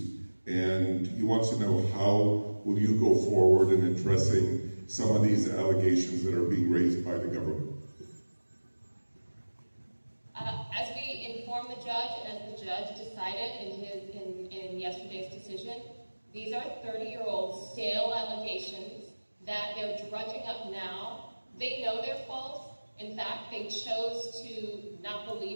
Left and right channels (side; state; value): both; inverted; correlation -1.00